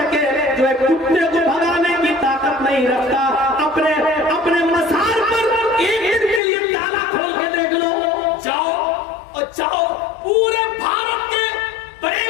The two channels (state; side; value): drops out; right; at 6.4 s